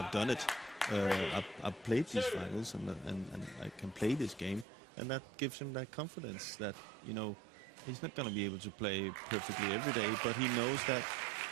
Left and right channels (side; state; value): left; drops out; at 4.7 s